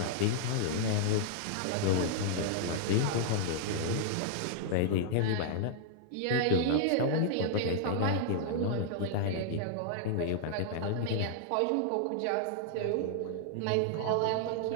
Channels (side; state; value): both; different; correlation -0.01